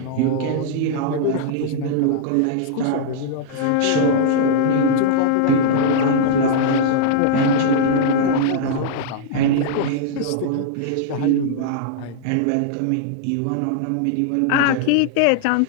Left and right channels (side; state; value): both; different; correlation -0.01